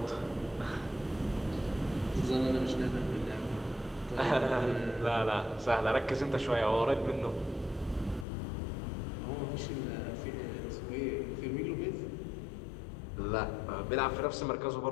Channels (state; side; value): drops out; right; at 8.2 s